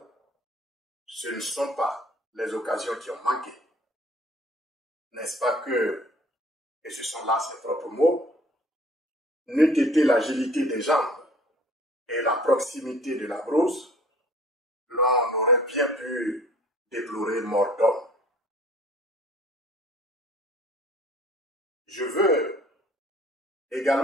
ce ne sont pas les occasions qui ont manqué. N'est-ce pas que, et ce sont là ses propres mots, n'eût été l'agilité des jambes et la proximité de la brousse, l'on aurait bien pu déplorer mort d'homme. Je veux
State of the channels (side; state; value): both; normal; correlation 0.52